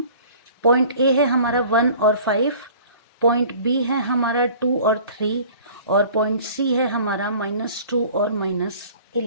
पॉइंट ए है हमारा 1 और 5, पॉइंट बी है हमारा 2 और 3 और पॉइंट सी है हमारा -2 और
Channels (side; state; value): both; inverted; correlation -0.47